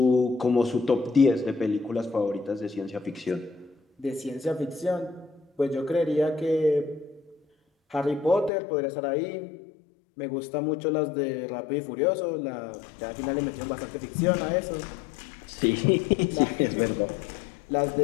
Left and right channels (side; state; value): right; drops out; at 8.5 s